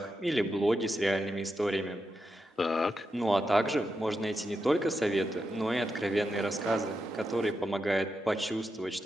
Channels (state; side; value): normal; both; correlation 0.86